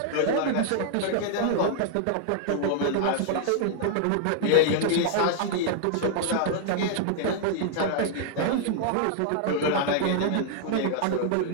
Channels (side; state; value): both; different; correlation -0.01